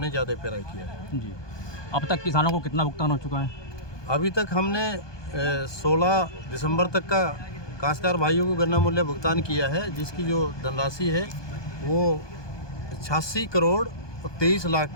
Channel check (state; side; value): late; right; 1.2 ms